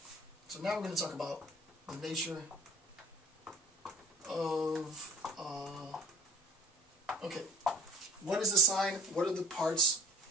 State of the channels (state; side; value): normal; both; correlation 0.46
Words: So now we're going to talk about the nature of, okay, what is a sign? What are the parts?